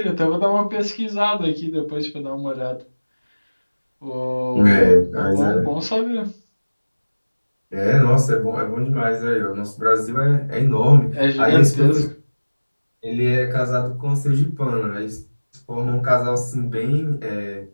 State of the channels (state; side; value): inverted; both; correlation -1.00